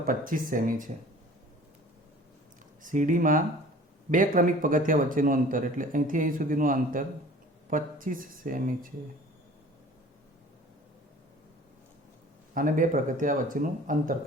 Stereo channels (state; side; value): normal; both; correlation 0.47